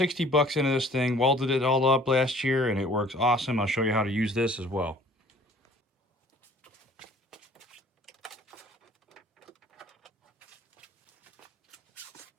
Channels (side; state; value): both; normal; correlation 0.53